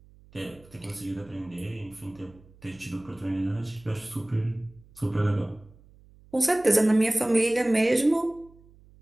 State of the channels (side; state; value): right; noise; hum, 26 dB below the sound